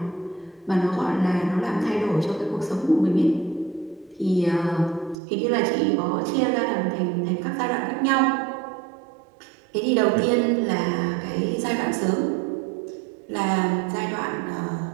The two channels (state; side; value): drops out; left; at 5.2 s